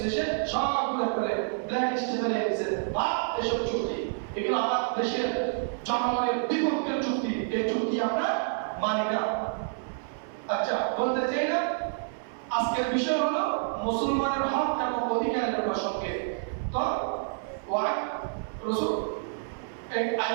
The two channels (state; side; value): silent; left; 57 dB below the other